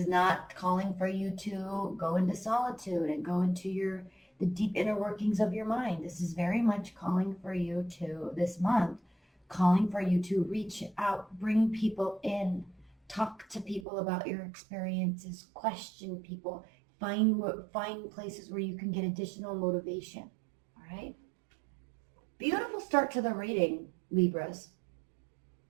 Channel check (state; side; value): drops out; left; at 13.9 s